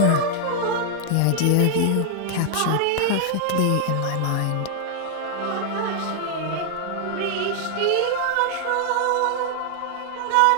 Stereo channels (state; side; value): different; both; correlation 0.00